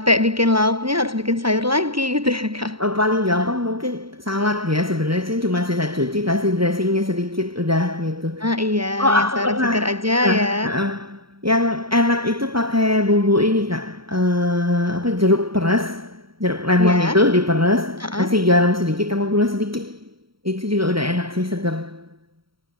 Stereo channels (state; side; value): late; left; 0.74 ms